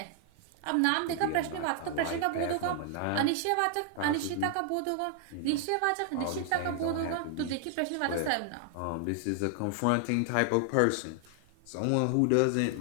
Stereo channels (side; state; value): both; different; correlation 0.00